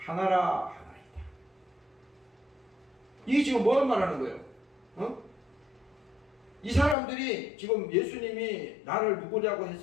이게 지금 뭘 말하는 거예요? 이 사람들이 지금 예수님이 나를 누구냐고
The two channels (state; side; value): drops out; right; at 7.0 s